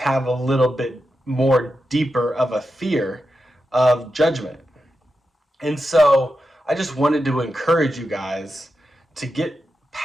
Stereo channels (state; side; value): normal; both; correlation 0.89